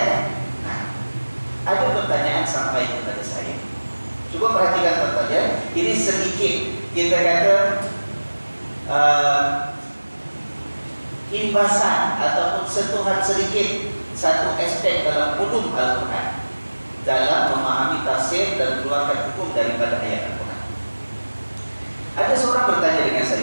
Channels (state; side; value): inverted; both; correlation -1.00